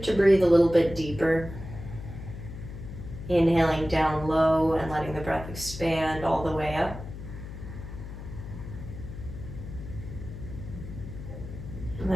to breathe a little bit deeper. Inhaling down low and letting the breath expand all the way up. And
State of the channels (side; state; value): left; noise; hum, 11 dB below the sound